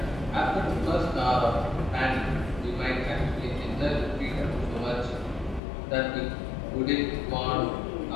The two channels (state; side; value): drops out; right; at 5.6 s